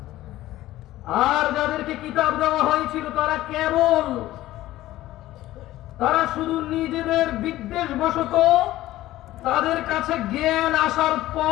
আর যাদেরকে কিতাব দেওয়া হয়েছিল তারা শুধু নিজেদের বিদ্বেষ বশত, তাদের কাছে জ্ঞান আসার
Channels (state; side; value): quieter; right; 15.6 dB